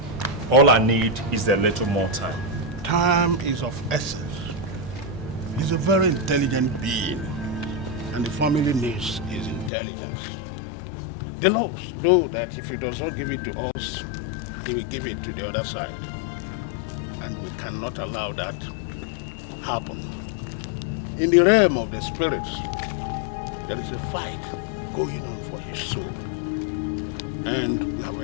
All I need is a little more time. Time is of essence. He's a very intelligent being, and the family needs his intelligence. The laws know that if he does not give it to us, he will give it to the other side. And we cannot allow that to happen. In the realm of the spirits, there is a fight going on for his soul. And we have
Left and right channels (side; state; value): right; drops out; at 9.7 s